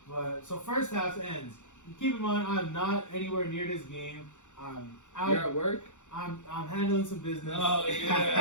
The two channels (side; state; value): right; late; 0.85 ms